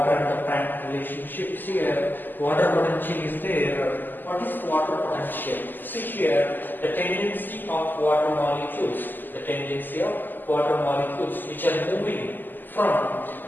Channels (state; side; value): late; right; 0.089 ms